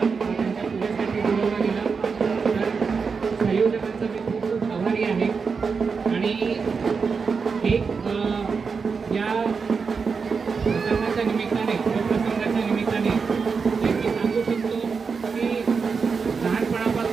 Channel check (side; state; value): left; quieter; 5.3 dB